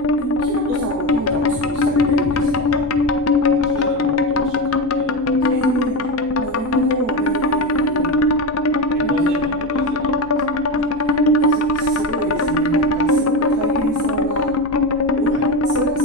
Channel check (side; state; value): left; noise; hum, 23 dB below the sound